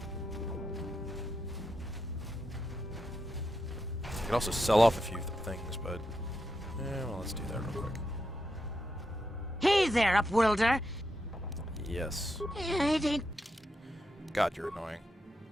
I could also sell off a few things, but well, let's do that real quick. Hey there, Upworlder! Yes. It ain't... God, you're annoying.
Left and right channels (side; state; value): both; normal; correlation 0.85